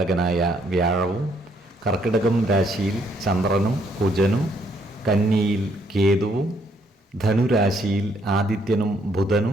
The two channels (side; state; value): both; normal; correlation 0.70